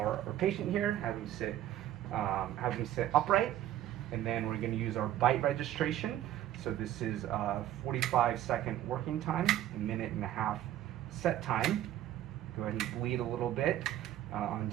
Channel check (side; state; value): left; quieter; 12.6 dB